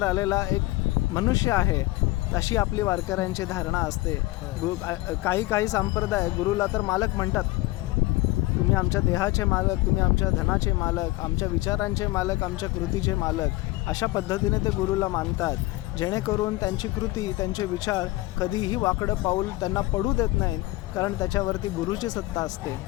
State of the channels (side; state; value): right; quieter; 19.4 dB